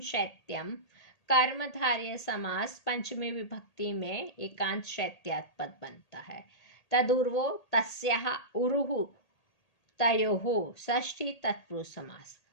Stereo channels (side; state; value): right; late; 1.8 ms